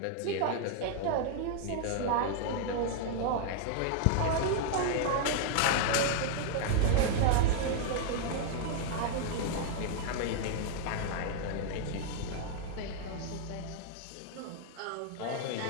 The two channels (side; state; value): both; different; correlation 0.00